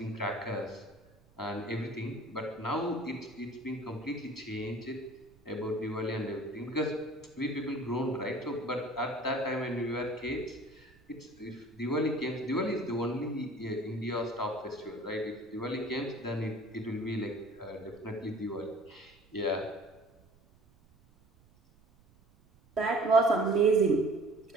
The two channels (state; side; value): noise; right; rumble, 29 dB below the sound